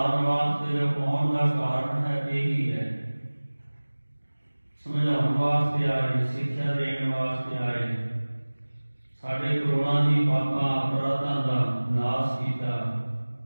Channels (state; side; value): inverted; both; correlation -1.00